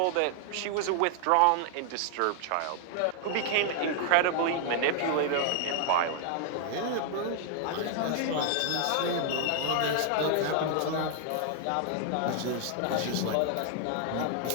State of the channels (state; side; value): different; both; correlation 0.00